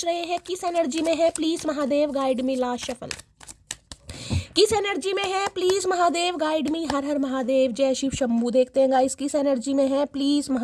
रहे हैं, किस एनर्जी में है, please Mahadev guide me. Last shuffle किस एनर्जी में है, प्लीज़ महादेव गाइड मी। हर हर महादेव, जय शिव शंभू। देखते हैं गाइस किस एनर्जी में है, प्लीज़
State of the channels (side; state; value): both; identical; correlation 1.00